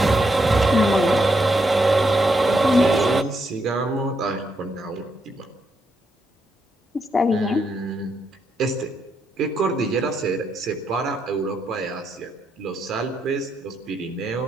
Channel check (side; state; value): both; normal; correlation 0.79